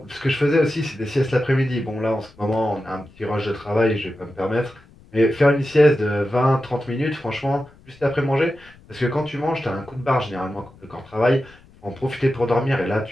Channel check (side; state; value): left; noise; rumble, 25 dB below the sound